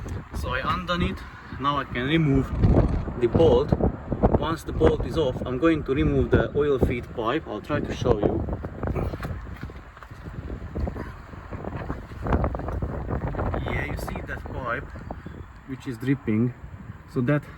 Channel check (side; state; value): both; identical; correlation 1.00